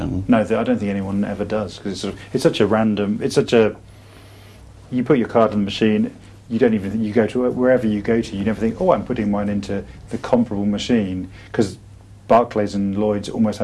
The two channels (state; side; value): identical; both; correlation 1.00